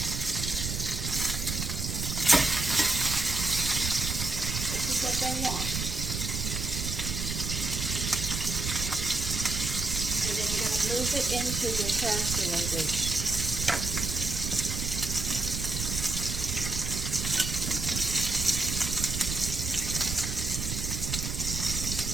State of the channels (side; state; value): right; noise; rumble, 3 dB below the sound